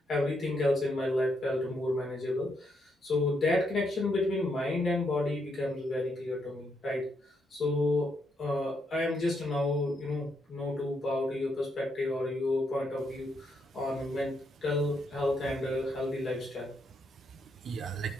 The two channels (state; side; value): normal; both; correlation 0.78